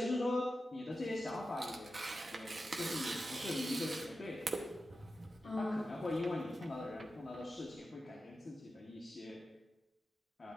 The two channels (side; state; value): both; normal; correlation 0.92